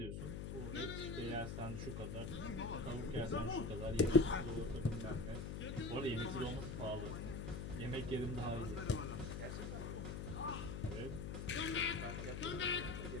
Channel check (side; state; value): left; noise; hum, 4 dB below the sound